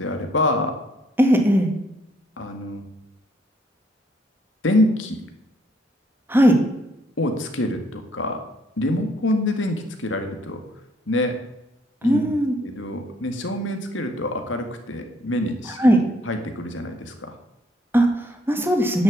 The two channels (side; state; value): both; normal; correlation 0.67